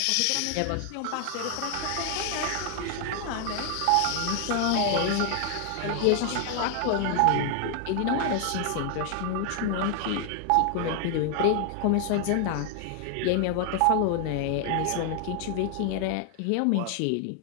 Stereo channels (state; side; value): different; both; correlation 0.00